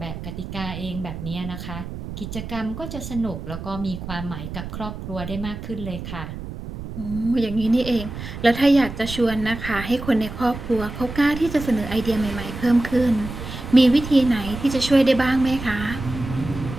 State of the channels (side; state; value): right; noise; rumble, 9 dB below the sound